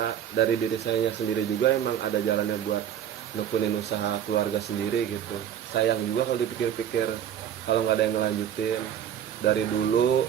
dari diri saya sendiri juga emang ada jalannya buat nekunin usaha keluarga sendiri gitu. Sayang juga kalau dipikir-pikir kalau nggak ada yang ngelanjutin. Dari dulu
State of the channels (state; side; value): quieter; left; 9.7 dB